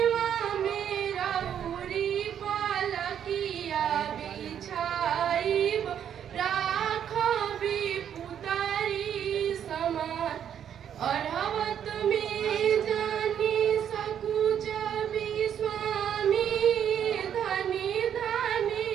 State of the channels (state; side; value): quieter; left; 9.1 dB